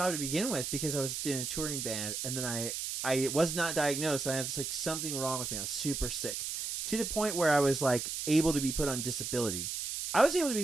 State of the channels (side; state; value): right; noise; hiss, 4 dB below the sound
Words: to begin with because I was in a touring band, and then I was not diagnosed. I had like something wrong with me. I was super sick to the point where I was like able to be put on disability. I was able to